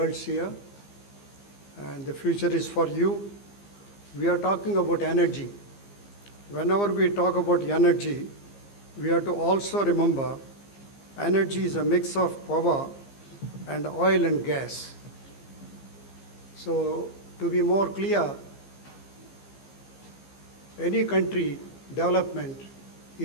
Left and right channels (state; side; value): late; right; 15 ms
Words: here, and the future is for you. We are talking about energy. Whenever we talk about energy, we have to also remember energy is a mix of power and oil and gas. So to be more clear, any country development